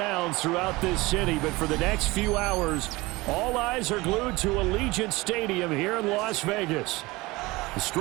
throughout this city, but for the next few hours, all eyes are glued to Allegiant Stadium here in Las Vegas.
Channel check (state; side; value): quieter; left; 21.8 dB